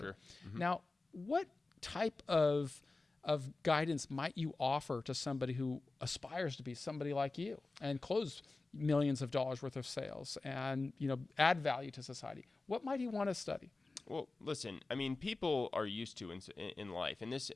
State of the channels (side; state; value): right; quieter; 3.4 dB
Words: Sure. Mm-hmm. Now, what type of guidance might you offer to somebody who aspires to be somebody like you and close millions of dollars worth of sales and add value to society? What might he want to study? Well, listen, I mean, people are used to in life, and this